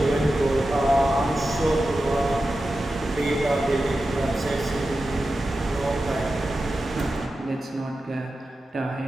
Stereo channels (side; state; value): both; normal; correlation 0.92